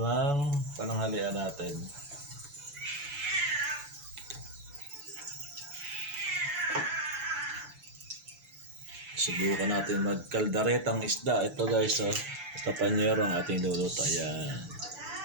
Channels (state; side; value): late; left; 7.0 ms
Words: pananghalian natin. Subukan natin magkaldaretang isda. Ito guys, oh. Ito Panyero ang ating luluto. Ayan.